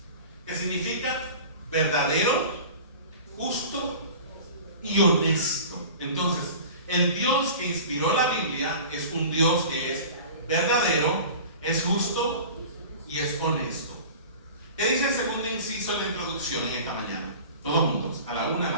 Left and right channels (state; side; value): inverted; both; correlation -0.39